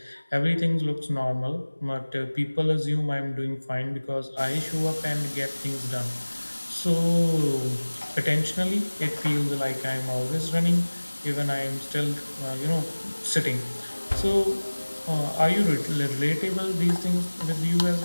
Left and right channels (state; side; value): inverted; both; correlation -1.00